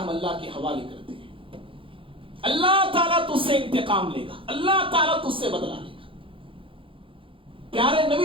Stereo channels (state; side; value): late; left; 0.25 ms